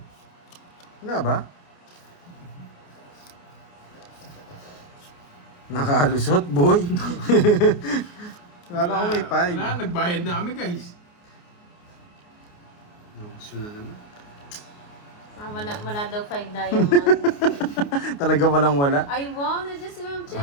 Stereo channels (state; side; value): late; right; 29 ms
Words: Wala ba? Nakalusot, boy. Wala ko may 5. Wala, nagbayad na kami, guys. Gusto na naman. Wala daw 5 diamond. Talaga walang wala. Ay, wow! Nandiyan si Ma'am